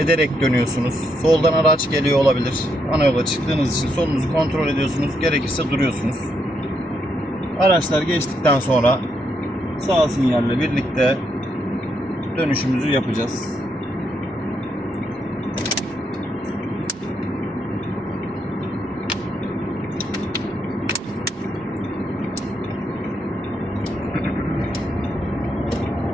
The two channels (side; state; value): both; normal; correlation 0.78